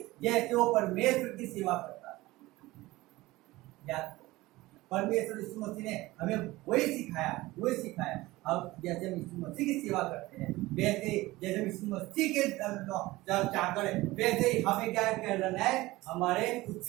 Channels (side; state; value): left; quieter; 19.2 dB